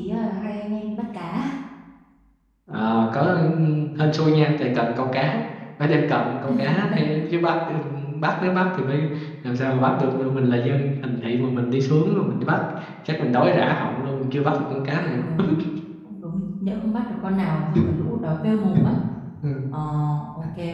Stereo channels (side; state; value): both; identical; correlation 1.00